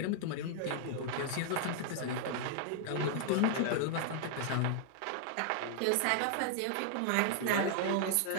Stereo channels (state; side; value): different; both; correlation 0.00